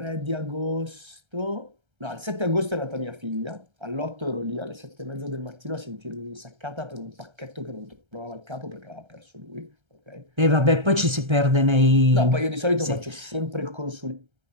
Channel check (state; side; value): late; left; 1.3 ms